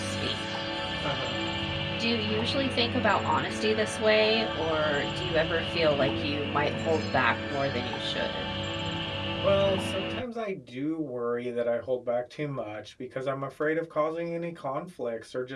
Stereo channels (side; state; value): both; identical; correlation 1.00